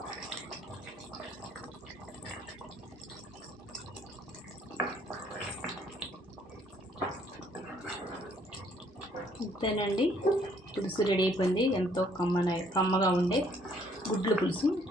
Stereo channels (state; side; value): normal; both; correlation 0.64